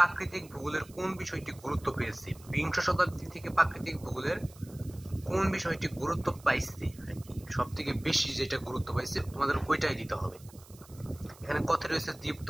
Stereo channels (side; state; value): right; noise; hiss, 23 dB below the sound